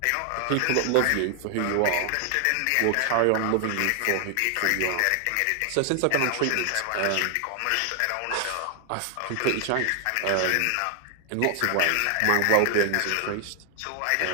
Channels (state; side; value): different; both; correlation 0.00